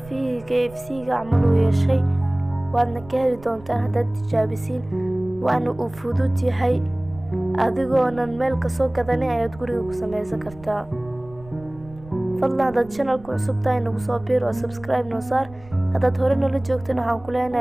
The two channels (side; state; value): right; noise; rumble, 20 dB below the sound